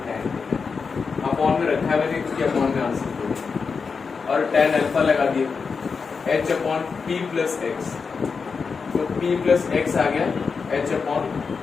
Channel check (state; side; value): quieter; right; 5.2 dB